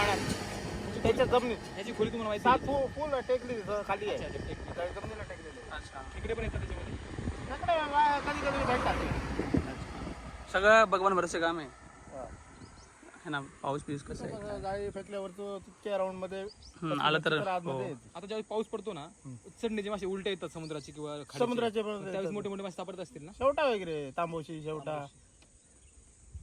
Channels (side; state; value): both; identical; correlation 1.00